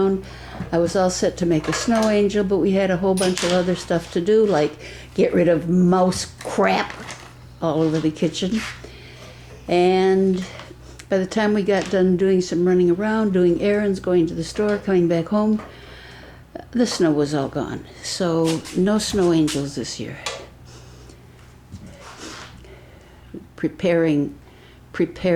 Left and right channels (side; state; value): both; identical; correlation 1.00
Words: I was all set to make a snow angel, but we had a whole bunch of other stuff to do, like get rid of mouse crap all over the kitchen. And by the time we got done doing some running around, doing errands, going to the store, coming back home, the snow was all gone. So no snow angels this year. Preparing